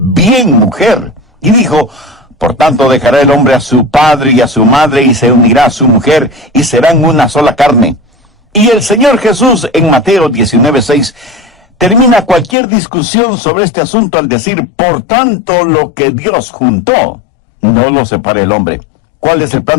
mujer. Y dijo: por tanto dejará el hombre a su padre y a su madre y se unirá a su mujer y serán una sola carne. Y el Señor Jesús en Mateo 19:6 termina cualquier discusión sobre este asunto al decir: por tanto lo que Dios juntó, no lo separe el hombre. ¿Cuál es el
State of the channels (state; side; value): drops out; right; at 12.6 s